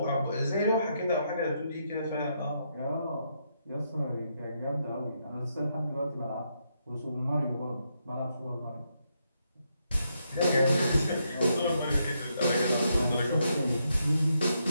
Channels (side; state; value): both; inverted; correlation -0.79